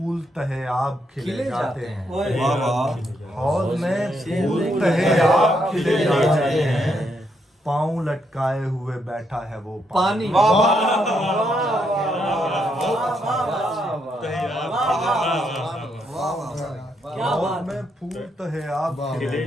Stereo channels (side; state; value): both; normal; correlation 0.77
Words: تہے آب کھلے جاتے ہیں. حوض میں پھول تہے آب کھلے جاتے ہیں. پاؤں لٹکائے ہوئے بیٹھا ہے وہ پانی. حوض میں پھول تہے آب کھلے